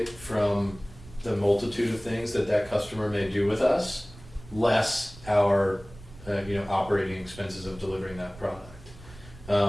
from the multitude of things that customer may do with us, less our operating expenses of delivering that product.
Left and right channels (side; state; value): right; noise; rumble, 19 dB below the sound